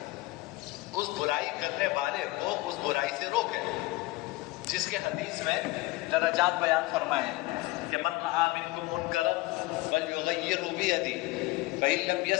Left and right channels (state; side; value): quieter; right; 20.7 dB